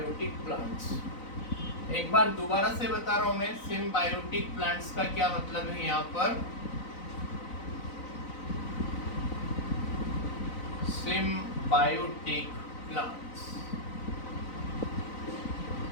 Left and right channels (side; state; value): right; late; 4.0 ms